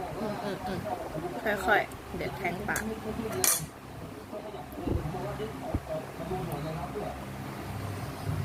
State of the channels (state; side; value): identical; both; correlation 1.00